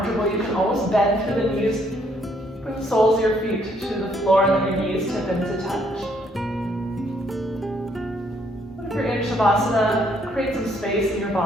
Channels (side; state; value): both; normal; correlation 0.69